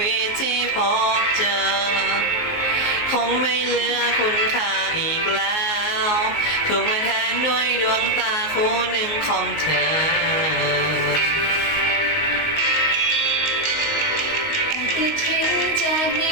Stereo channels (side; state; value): right; late; 19 ms